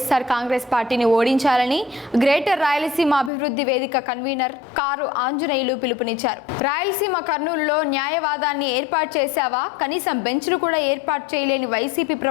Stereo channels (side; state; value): right; drops out; at 3.3 s